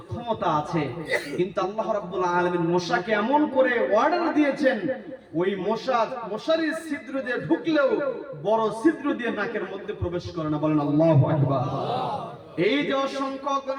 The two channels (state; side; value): identical; both; correlation 1.00